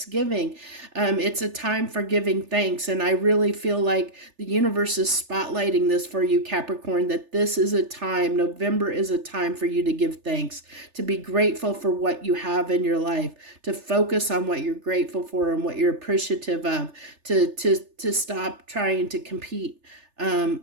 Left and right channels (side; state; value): left; late; 3.3 ms